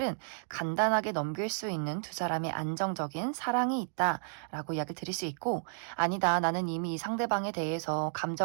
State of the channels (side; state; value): left; silent; 56 dB below the other